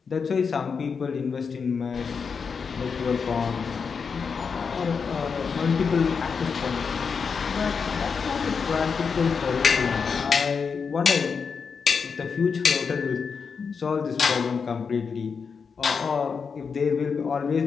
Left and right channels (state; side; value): quieter; right; 5.7 dB